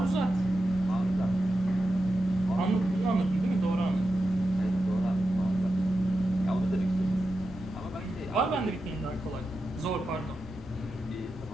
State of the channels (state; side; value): normal; both; correlation 0.90